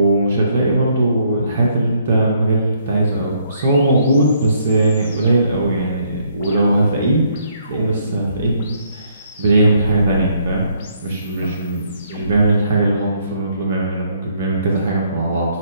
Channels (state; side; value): inverted; both; correlation -0.69